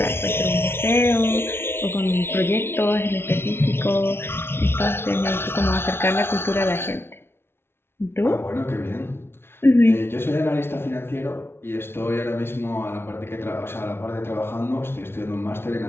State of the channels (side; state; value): right; late; 0.12 ms